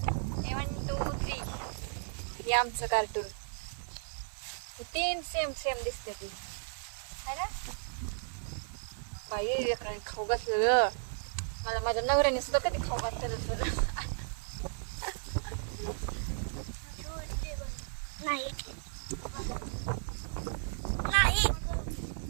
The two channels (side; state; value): left; silent; digital silence